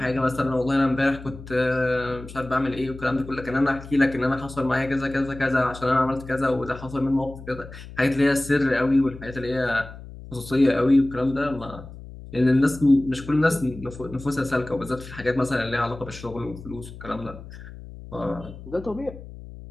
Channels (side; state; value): left; noise; hum, 15 dB below the sound